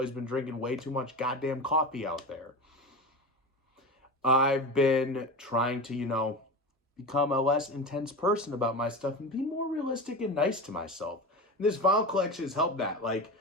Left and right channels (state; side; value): normal; both; correlation 0.26